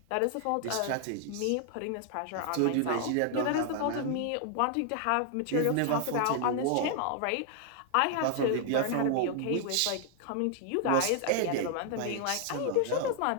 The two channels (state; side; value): different; both; correlation 0.00